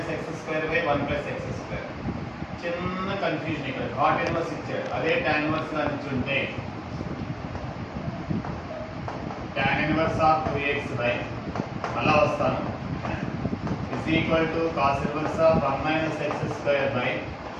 x square by 1 plus x square. చిన్న కన్ఫ్యూజన్ ఇక్కడ cot inverse ఇచ్చాడు, అదే tan inverse గా ఇచ్చుంటే tan inverse of 2x by మళ్ళా వస్తాను is equal to cos inverse of 1 minus x square by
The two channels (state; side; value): identical; both; correlation 1.00